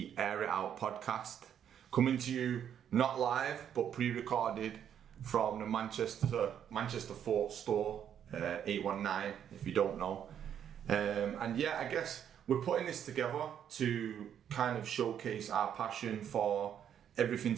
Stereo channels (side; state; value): left; quieter; 9.2 dB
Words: Air It Out podcast. Coming to you not live but pre-recorded from the Manchester Fort store, 819 if you don't know. And yeah, I guess we're putting this together to kind of showcase our passion for everything